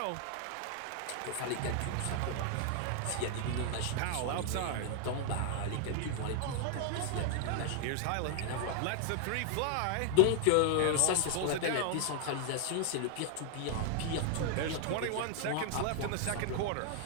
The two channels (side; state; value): both; different; correlation 0.00